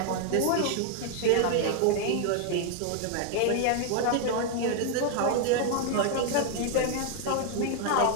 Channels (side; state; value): both; different; correlation 0.00